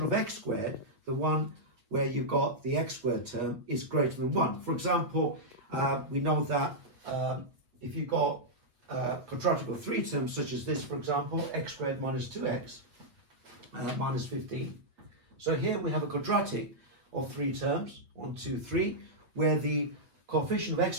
of x squared, the one where you've got the x squared term, is greater than 1. For example, we know that if you've got a quadratic of 3 terms such as this, for example, x squared minus 2x minus 15. So here we have a quadratic of 3 terms, 1, 2, 3, where the coefficient of x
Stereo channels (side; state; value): left; late; 8.3 ms